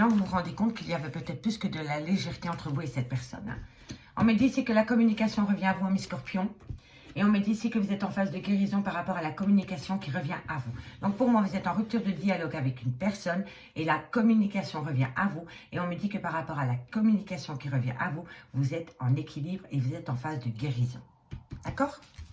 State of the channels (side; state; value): both; identical; correlation 1.00